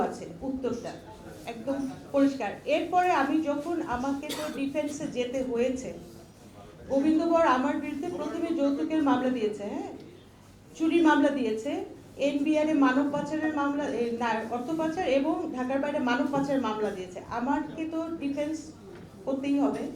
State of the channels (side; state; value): both; identical; correlation 1.00